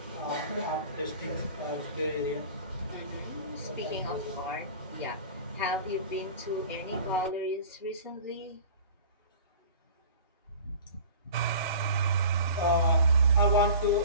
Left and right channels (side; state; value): both; inverted; correlation -0.40